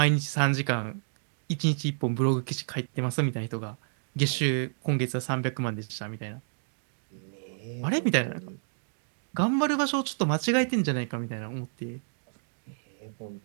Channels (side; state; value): left; silent; digital silence